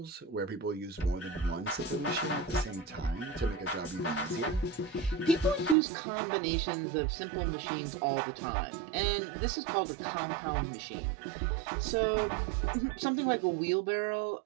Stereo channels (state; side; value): drops out; left; at 5.8 s